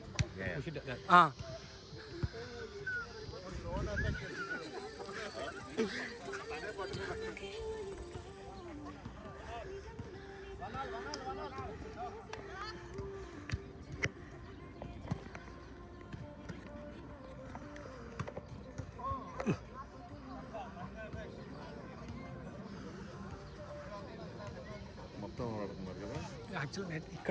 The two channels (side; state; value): both; identical; correlation 1.00